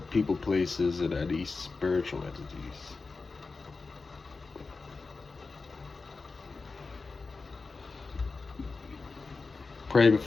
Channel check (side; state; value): right; quieter; 4.1 dB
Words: people, places, and any spiritual entities. Pray